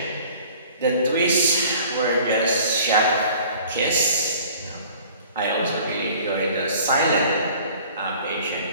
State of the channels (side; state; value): both; inverted; correlation -0.49